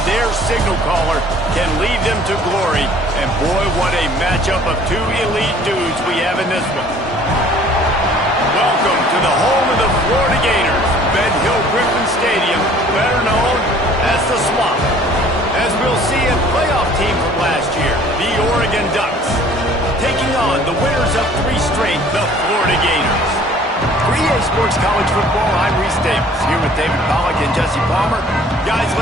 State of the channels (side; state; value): both; normal; correlation 0.53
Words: their signal caller can lead them to glory. And boy, what a matchup of two elite dudes we have in this one. Welcome to the home of the Florida Gators, Ben Hill Griffin Stadium, better known as the Swamp. As we'll see a playoff team from last year, the Oregon Ducks, taking on the winners of 3 straight, the Florida Gators. For EA Sports College Football, I'm Reese Davis, here with David Pollack and Jesse Palmer. Guys,